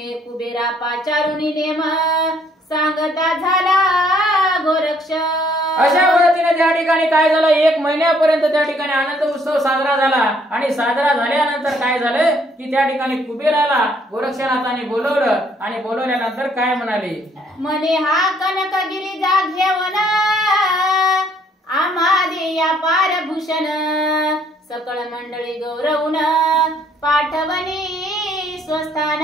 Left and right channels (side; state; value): both; normal; correlation 0.65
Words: पाचारुनी नेम सांगता झाला गोरक्ष। अशा पद्धतीने त्या ठिकाणी काय झालं, 1 महिन्यापर्यंत त्या ठिकाणी आनंद उत्सव साजरा झाला आणि साजरा झाल्यानंतर काय झालं की त्या ठिकाणी कुबेराला गोरक्षनाथाने बोलवलं आणि बोलवल्यानंतर काय म्हणाले, म्हणे हा कनकगिरी जा घेऊन आम्हा देया पारभूषण सकळ मंडळी गौरवून पाठवणी